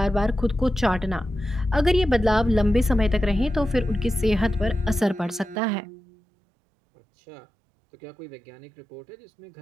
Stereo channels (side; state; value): left; drops out; at 5.6 s